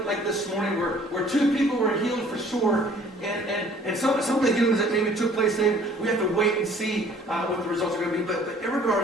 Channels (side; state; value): both; normal; correlation 0.54